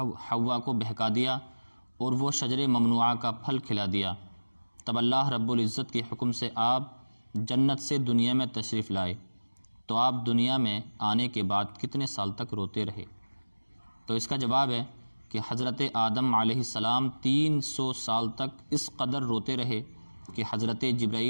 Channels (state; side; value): inverted; both; correlation -1.00